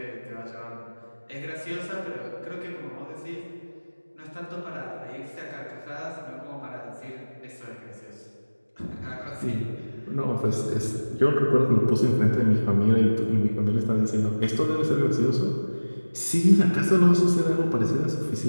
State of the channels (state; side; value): inverted; both; correlation -1.00